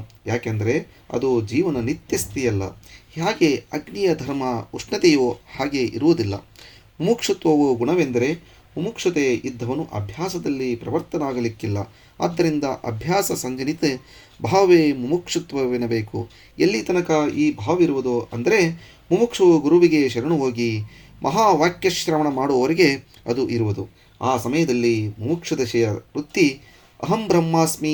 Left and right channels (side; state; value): both; identical; correlation 1.00